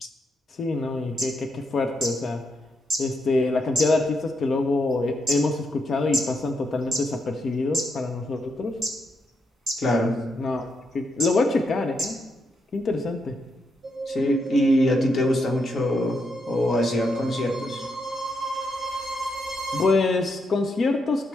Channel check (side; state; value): both; normal; correlation 0.81